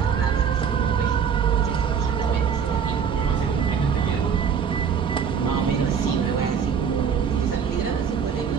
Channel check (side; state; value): left; quieter; 6.9 dB